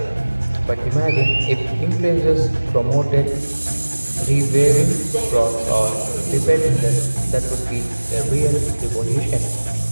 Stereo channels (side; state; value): both; inverted; correlation -1.00